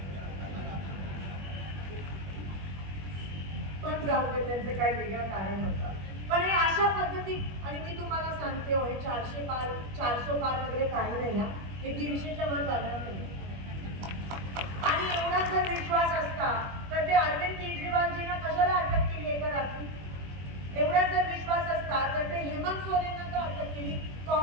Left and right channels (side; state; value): left; late; 21 ms